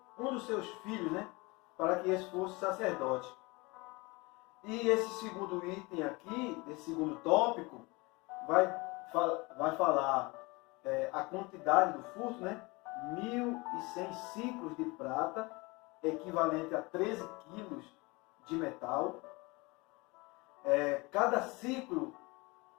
um dos seus filhos, né? Para que esse fosse sacerdote. E esse segundo item aqui, esse segundo tópico, vai falar a quantidade do furto, né? 1.100 ciclos de prata, equivalente a 13 quilos de metal. Cada ciclo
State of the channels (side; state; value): right; quieter; 25.2 dB